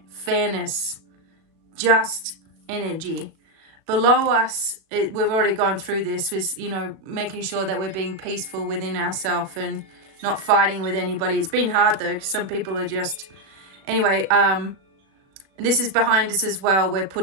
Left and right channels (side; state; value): left; late; 36 ms